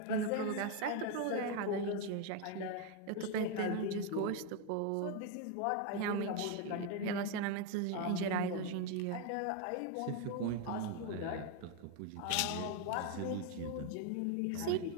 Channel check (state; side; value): different; both; correlation 0.01